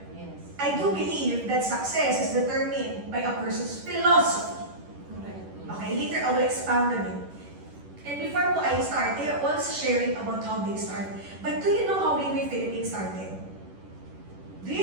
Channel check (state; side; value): late; left; 10 ms